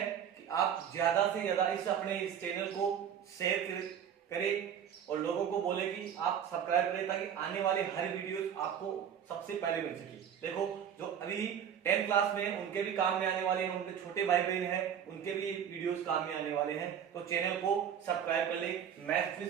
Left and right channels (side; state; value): left; quieter; 8.7 dB